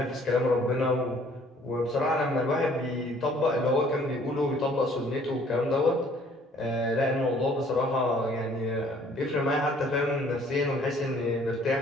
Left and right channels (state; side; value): normal; both; correlation 0.58